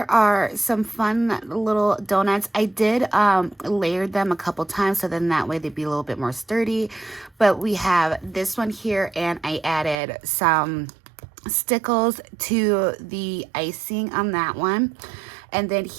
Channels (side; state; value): left; drops out; at 10.0 s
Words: are some fun little donuts. I did layer them a couple times, so then that way they'd be a little bit more sturdy. But we have this one here, and I added some stickles to the icing on that one. And then